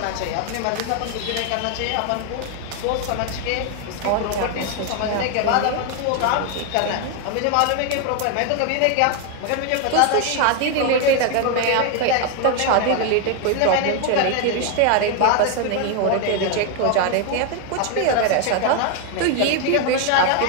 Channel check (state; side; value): different; both; correlation 0.01